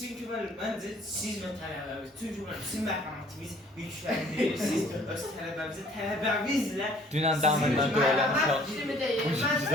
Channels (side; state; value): both; normal; correlation 0.57